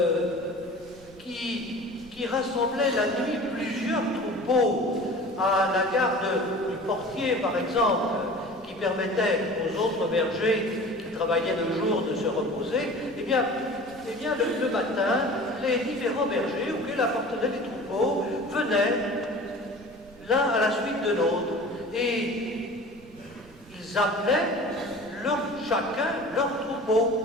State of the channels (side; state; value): right; noise; rumble, 22 dB below the sound